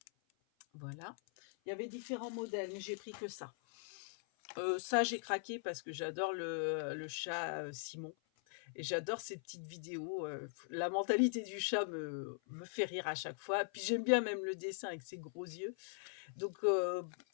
Voilà. Il y avait différents modèles, mais j'ai pris que ça. Ça, j'ai craqué parce que j'adore le chat Simon. Et j'adore ces petites vidéos. La mentalité du chat me fait rire à chaque fois. Puis j'aime bien même le dessin avec ses gros yeux. Donc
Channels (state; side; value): silent; right; 50 dB below the other